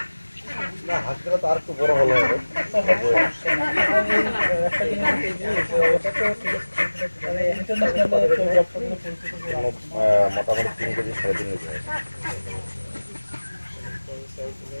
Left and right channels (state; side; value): inverted; both; correlation -1.00